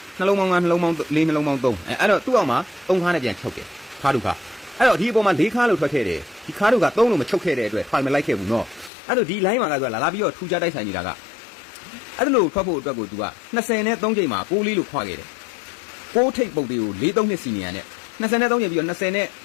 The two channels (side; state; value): right; drops out; at 8.9 s